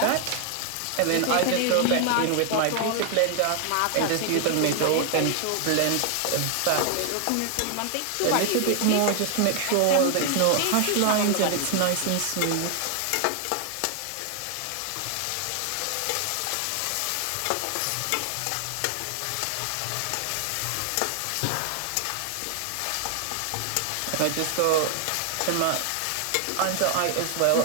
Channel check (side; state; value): both; different; correlation 0.00